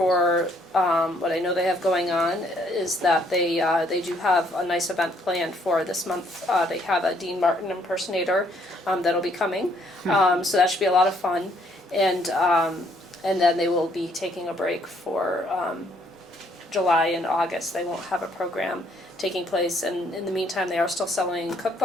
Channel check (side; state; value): both; normal; correlation 0.67